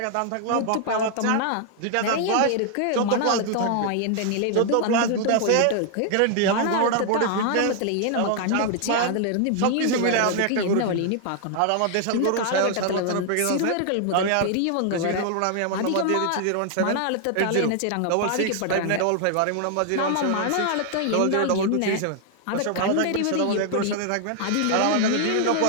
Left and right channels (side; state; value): both; different; correlation 0.00